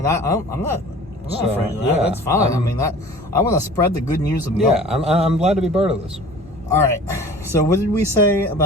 I'm not So, afraid of that. yeah, That's fine. I want to spread the good news of milk. Yeah, I'm glad to be part of this. All right. So what did we say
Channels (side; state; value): both; normal; correlation 0.44